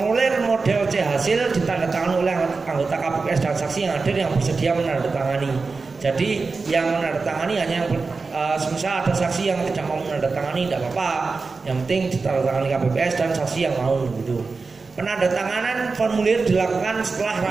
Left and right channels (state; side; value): quieter; left; 4.3 dB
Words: model C hasil ditandatangani oleh anggota KPPS dan saksi yang hadir yang bersedia menandatangani. Jadi yang menandatangani hanya yang semisal ada saksi yang tidak mau menandatangani tidak apa-apa. Yang penting ditandatangani KPPS dan saksi yang mau gitu. Penandatanganan formulir dilakukan setelah